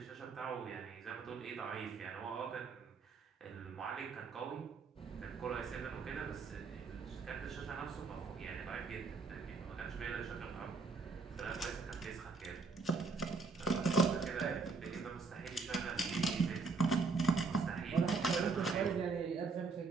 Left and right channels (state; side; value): quieter; left; 4.5 dB